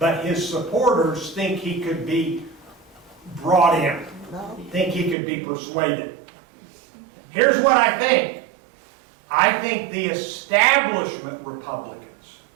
his supporters think he could be brought in, think he could be persuaded. Here's what I think. I think the establishment Republicans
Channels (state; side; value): drops out; left; at 5.2 s